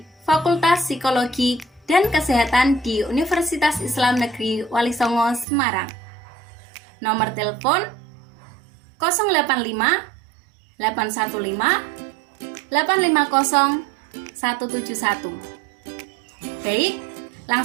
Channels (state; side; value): drops out; left; at 5.5 s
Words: Fakultas Psikologi dan Kesehatan di Universitas Islam Negeri Wali Songo Semarang. Nomor telepon 085 815 850 171. Baik,